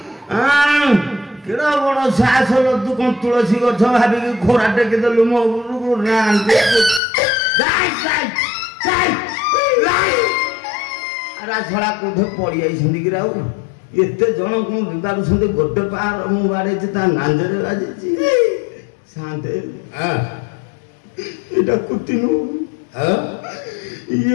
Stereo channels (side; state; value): right; drops out; at 7.0 s